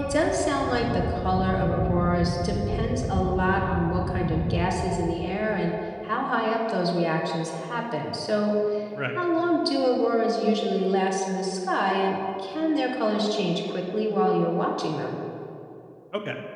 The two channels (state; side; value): identical; both; correlation 1.00